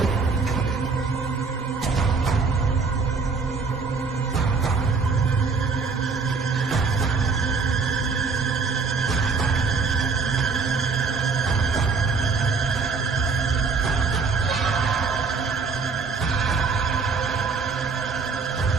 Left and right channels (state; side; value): quieter; left; 4.7 dB